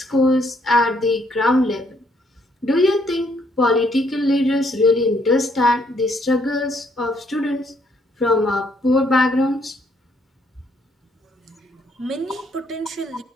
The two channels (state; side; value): normal; both; correlation 0.69